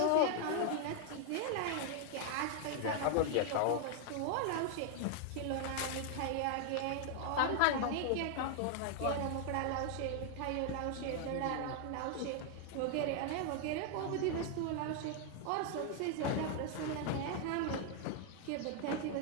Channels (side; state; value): both; different; correlation 0.00